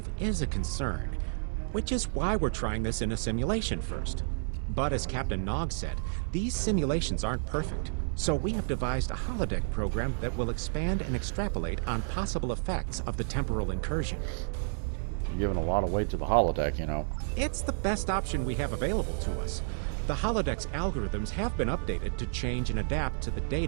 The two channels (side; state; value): left; silent; 57 dB below the other